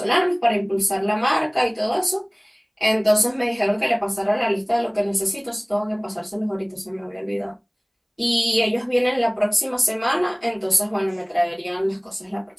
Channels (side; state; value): both; identical; correlation 1.00